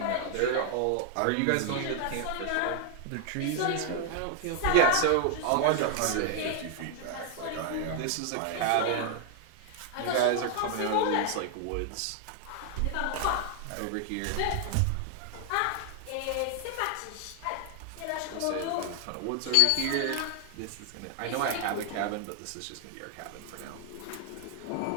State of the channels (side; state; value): both; different; correlation 0.00